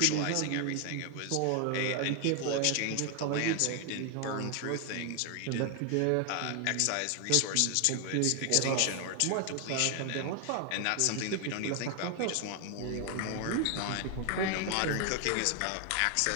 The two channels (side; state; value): both; different; correlation 0.00